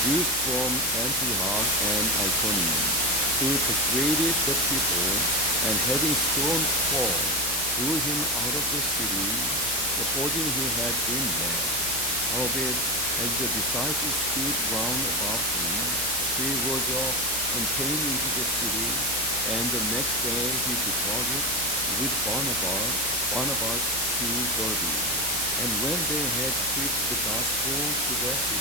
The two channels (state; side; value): normal; both; correlation 0.18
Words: Jews from Antioch and Iconium, who persuaded the people, and having stoned Paul, threw him out of the city, supposing he had been dead. Howbeit, as the disciples stood round about him, he rose up and came into the city, and the next day he departed with Barnabas to Derbe. And when they had preached the gospel to that